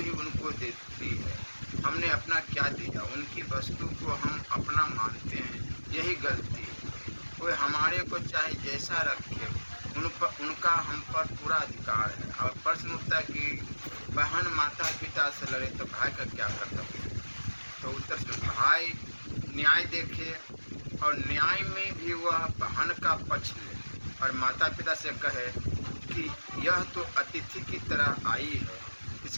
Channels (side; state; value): both; inverted; correlation -1.00